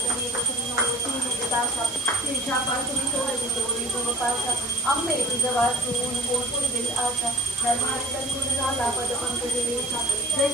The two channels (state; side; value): noise; right; hiss, 10 dB below the sound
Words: प्रसन्नवतीनिदासा तिरछापासुनी सोडवी तोरी गोपाशा अंबे तुझं वाचून कोण दिल आशा धर्मार्थ झाला पद पंकज रेखा जय